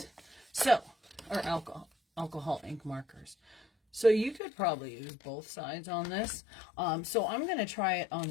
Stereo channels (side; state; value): right; drops out; at 4.4 s